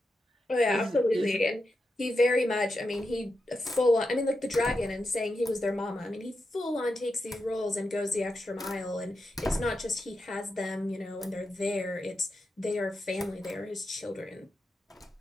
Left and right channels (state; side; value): normal; both; correlation 0.88